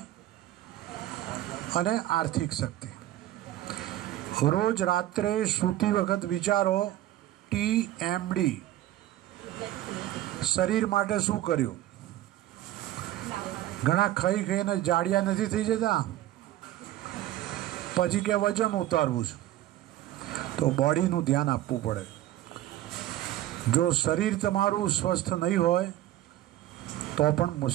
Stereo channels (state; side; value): quieter; left; 14.2 dB